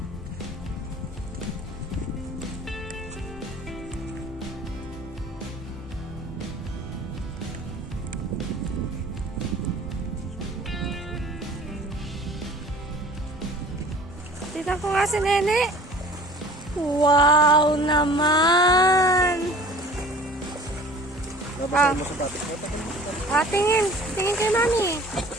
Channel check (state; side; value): normal; both; correlation 0.46